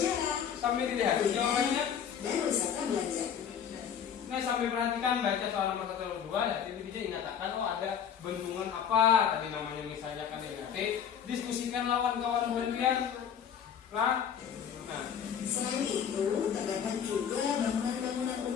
sambil dilihat jawabannya. dan wisata belanja. Nah, sambil perhatikan baca soal nomor 1 dan 2 ya, itu bisa dinyatakan ada bendungan apa tadi namanya misalnya kan ya. Oke, diskusikan lawan kawan kalian. Nah, Selain itu, terdapat juga bangunan-bangunan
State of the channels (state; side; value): quieter; right; 8.2 dB